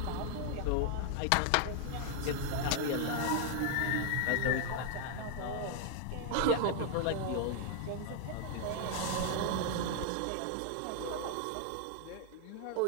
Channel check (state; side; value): different; both; correlation 0.00